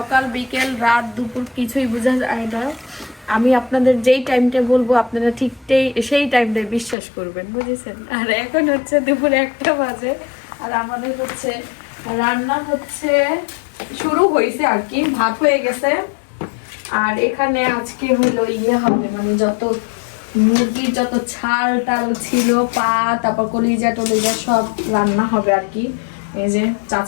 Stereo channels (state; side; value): drops out; right; at 7.0 s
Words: বিকেল রাত দুপুর কিছুই বোঝা যায় না। আমি আপনাদের যেই টাইমটা বলবো আপনারা ঠিক সেই টাইমটাই বিশ্বাস করবেন, বুঝেছেন? আর এখন হচ্ছে দুপুর 1টা বাজে, আর আমাদের হচ্ছে রান্না হচ্ছে শুরু হয়েছে আর কি, ভাত হয়ে গেছে। আর এখানে আজকে হলো ইয়ে হবে, মানে যত মুরগির যত ছাল টাল ছিল, পা, তারপর কলিজা টলিজা সব রান্না হবে আর কি। এই যে